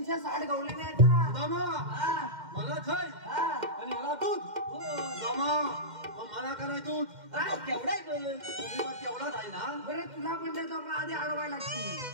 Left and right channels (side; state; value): left; late; 2.1 ms